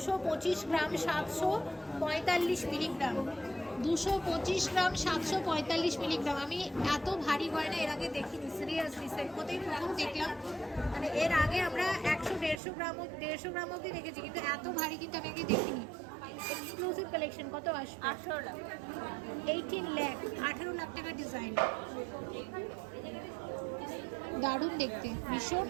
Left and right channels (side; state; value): left; drops out; at 12.6 s